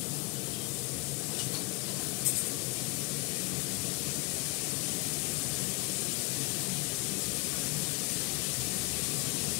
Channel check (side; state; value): right; quieter; 25.4 dB